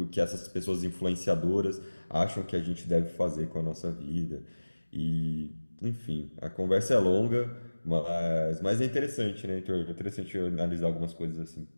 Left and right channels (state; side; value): inverted; both; correlation -1.00